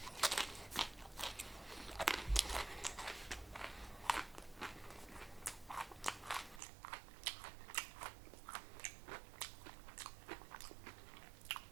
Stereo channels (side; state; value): left; drops out; at 6.6 s